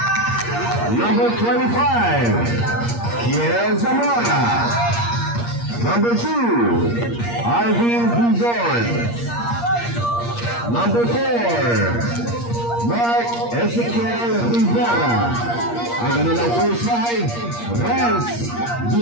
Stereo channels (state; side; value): late; right; 8.5 ms